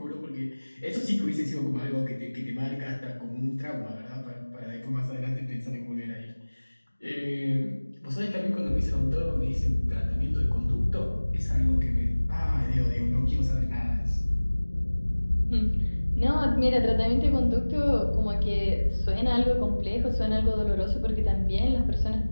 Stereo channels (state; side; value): inverted; both; correlation -1.00